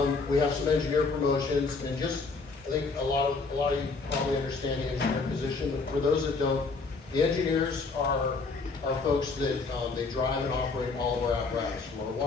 we have some engineer promotions, and just, I think a lot of you probably understand the engineer position, but for those that don't, the engineers are folks that, they drive and operate all of our apparatus, from our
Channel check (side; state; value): right; quieter; 4.1 dB